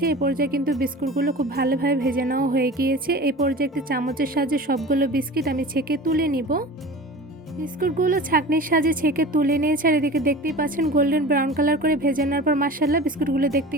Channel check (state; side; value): normal; both; correlation 0.36